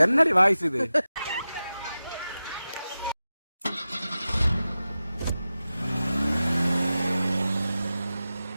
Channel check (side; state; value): both; inverted; correlation -0.94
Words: என்னடி வாய்ஸ் இது?